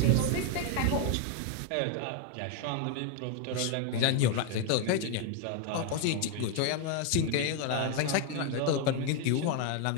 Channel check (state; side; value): different; both; correlation 0.01